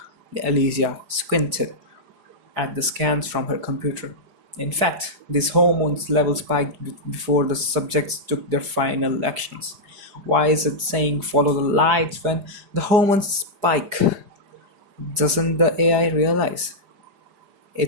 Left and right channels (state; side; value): late; left; 4.9 ms